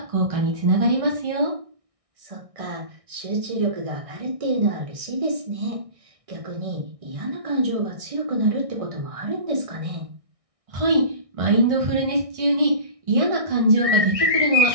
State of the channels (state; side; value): late; left; 1.6 ms